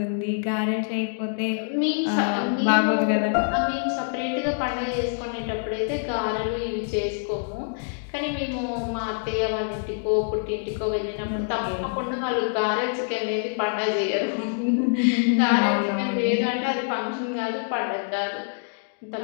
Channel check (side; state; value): right; silent; digital silence